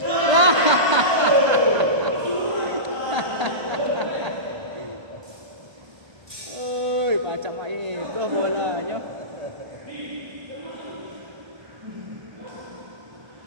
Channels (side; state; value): left; late; 1.3 ms